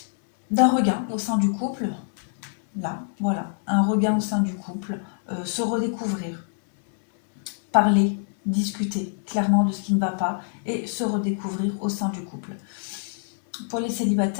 d'un regain au sein du couple. Là, voilà, un regain au sein du couple, se redécouvrir, parler, discuter clairement de ce qui ne va pas et se redécouvrir au sein du couple. Pour les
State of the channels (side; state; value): right; silent; 62 dB below the other